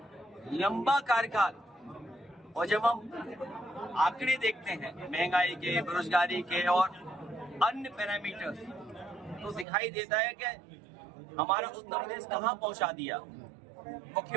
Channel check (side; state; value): left; drops out; at 9.7 s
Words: लंबा कार्यकाल, और जब हम आंकड़े देखते हैं महंगाई के, बेरोजगारी के और अन्य पैरामीटर्स, तो दिखाई देता है कि हमारा उत्तर प्रदेश कहां पहुंचा दिया।